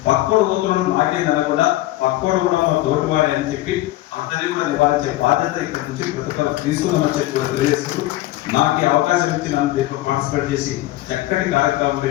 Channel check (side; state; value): right; quieter; 16.5 dB